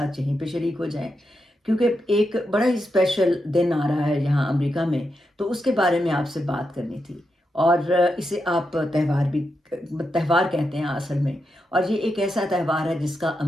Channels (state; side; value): normal; both; correlation 0.86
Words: यहीं पे शरीक हो जाएँ, क्योंकि एक बड़ा ही स्पेशल दिन आ रहा है यहाँ अमेरिका में, तो उसके बारे में आपसे बात करनी थी। और इसे आप त्यौहार कहते हैं असल में, और ये एक ऐसा त्यौहार है जिसका